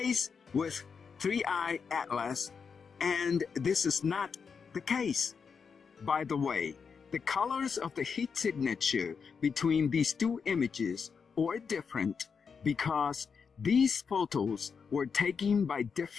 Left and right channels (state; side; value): quieter; right; 5.9 dB